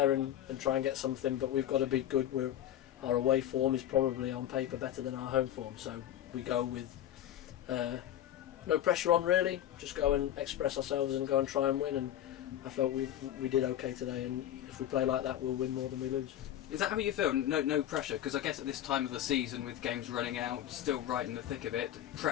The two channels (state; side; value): quieter; right; 11.7 dB